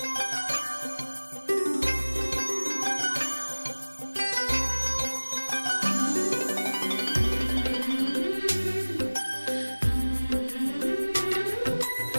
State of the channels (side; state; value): both; inverted; correlation -1.00